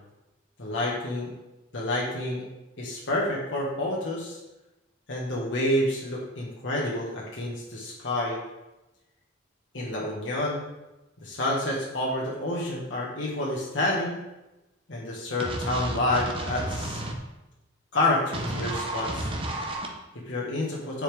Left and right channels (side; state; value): both; normal; correlation 0.16